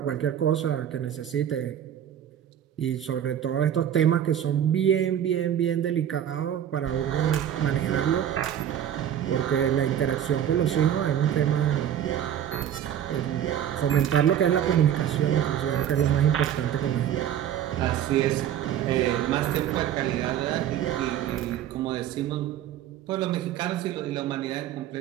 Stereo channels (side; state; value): left; quieter; 10.2 dB